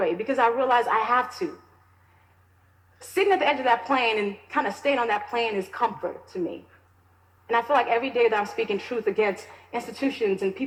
because I realize I have to. Sitting at the edge of that plane and kind of staying on that plane is comfort to me. And I feel like every day that I'm speaking truth against institutions and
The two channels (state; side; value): identical; both; correlation 1.00